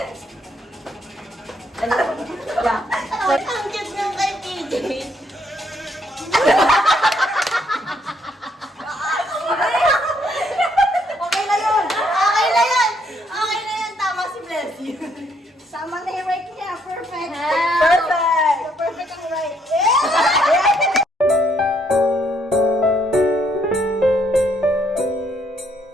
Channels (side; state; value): both; normal; correlation 0.70